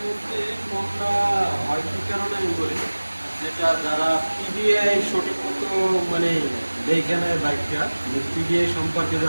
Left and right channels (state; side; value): inverted; both; correlation -1.00